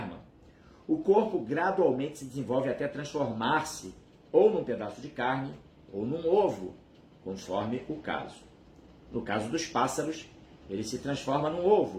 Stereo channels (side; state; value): both; identical; correlation 1.00